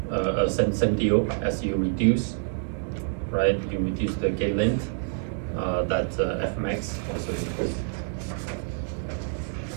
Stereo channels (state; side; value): silent; left; digital silence